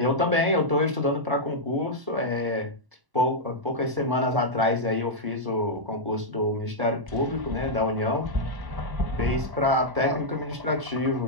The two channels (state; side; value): late; left; 1.0 ms